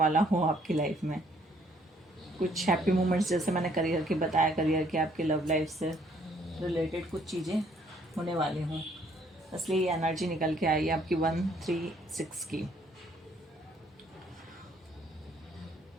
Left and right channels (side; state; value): both; normal; correlation 0.64